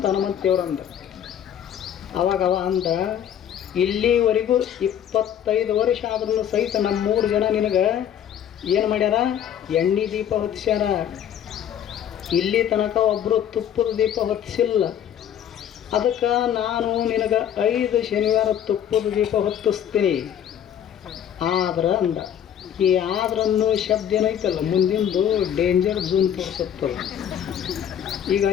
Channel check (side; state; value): right; quieter; 9.6 dB